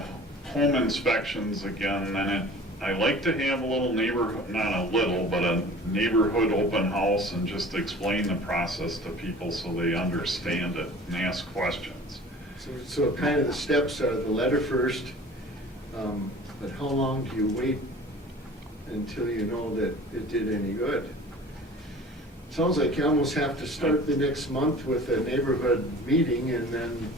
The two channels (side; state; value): both; normal; correlation 0.44